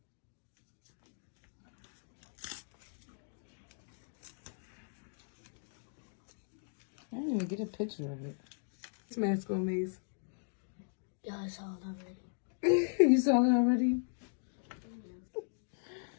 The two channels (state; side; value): silent; right; digital silence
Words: I didn't even get a picture of it. This mask on me. Yeah, I saw it already. You saw it already?